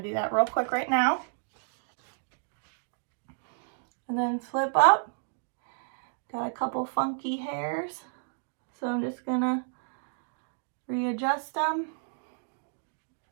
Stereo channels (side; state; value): left; silent; digital silence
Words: do that real quick right now. And then flip up. Got a couple funky hairs, so I'm just gonna readjust them.